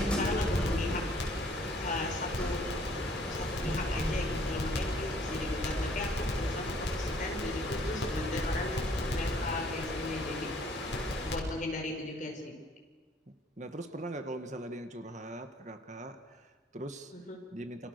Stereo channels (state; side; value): normal; both; correlation 0.60